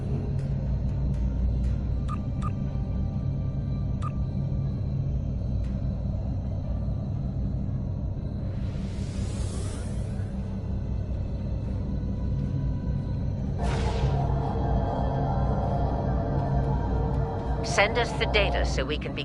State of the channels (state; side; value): identical; both; correlation 1.00